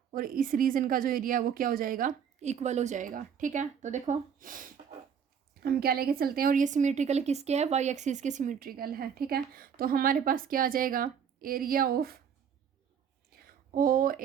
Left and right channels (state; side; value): quieter; left; 7.6 dB